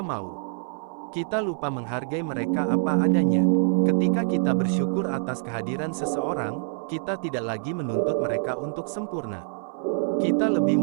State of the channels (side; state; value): left; silent; 60 dB below the other